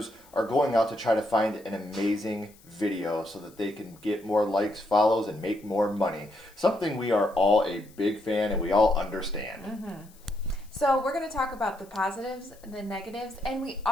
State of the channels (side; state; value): left; noise; hiss, 27 dB below the sound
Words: are going out to try to find an amazing video so that they can get more likes, follows, and make more money. Something we are all a big fan and we all understand. Mm-hmm. So we're going to talk about the positives, the negatives, and we